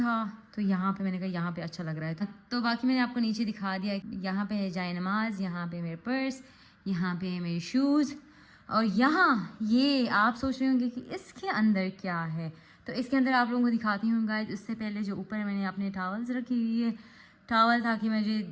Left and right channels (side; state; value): both; identical; correlation 1.00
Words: तो यहाँ पे मैंने कहा यहाँ पे अच्छा लग रहा है। तो बाकी मैंने आपको नीचे दिखा दिया। यहाँ पे है जाए नमाज, यहाँ पे मेरे पर्स, यहाँ पे है मेरे शूज़, और यहाँ ये आप सोच रहे होंगे कि इसके अंदर क्या है। तो इसके अंदर आप लोगों को दिखाती हूँ गाइस। उससे पहले जो ऊपर मैंने अपने टॉवल्स रखी हुई है, टॉवल ताकि मुझे